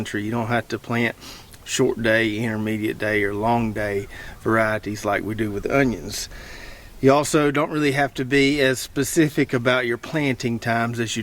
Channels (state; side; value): identical; both; correlation 1.00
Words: You don't have to plant short day, intermediate day, or long day varieties like we do with onions. You also don't really have to be as specific about your planting times as you